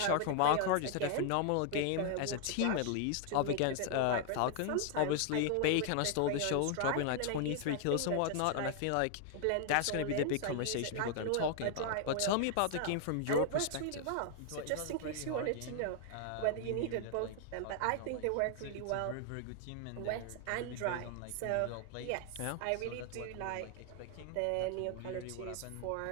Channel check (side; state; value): both; different; correlation 0.00